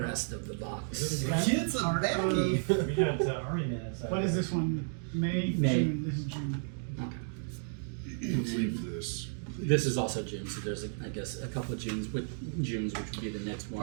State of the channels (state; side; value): silent; left; digital silence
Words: of the box. Kids are baggy. We got Army Men inside. What is this one? May? June. This is June. Let's leave this. This is also June, so there's I guess a couple of Junes, which would be the next one.